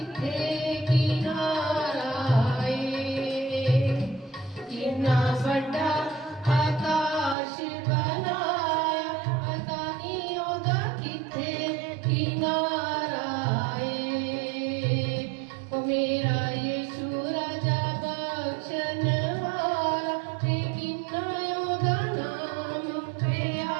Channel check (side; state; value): left; drops out; at 7.4 s